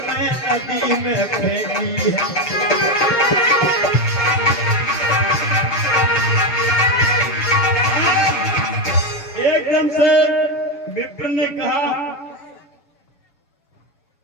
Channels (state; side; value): late; right; 7.0 ms